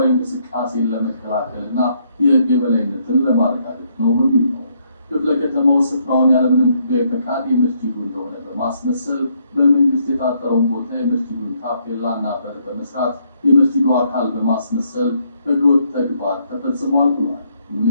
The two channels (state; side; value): inverted; both; correlation -0.72